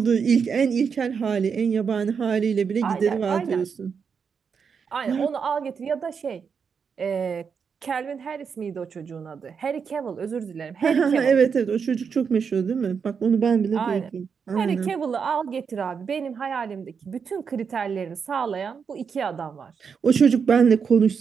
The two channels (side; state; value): left; quieter; 6.2 dB